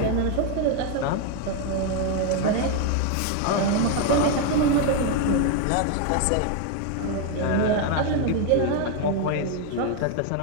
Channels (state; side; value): different; both; correlation 0.01